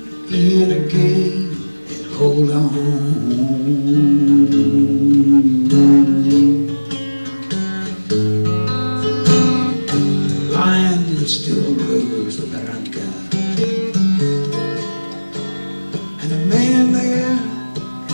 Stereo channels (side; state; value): both; inverted; correlation -1.00